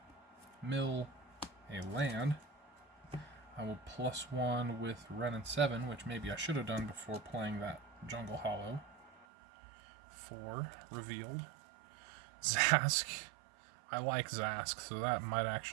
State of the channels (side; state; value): left; drops out; at 9.2 s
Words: Mill a land. I will +1 with Renin 7, which maybe I should have done before playing that Jungle Hollow. 4. Revealed. Zask. I like Zask, so that might